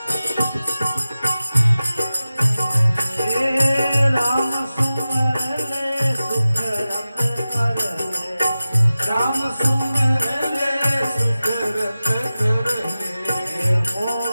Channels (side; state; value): both; inverted; correlation -0.95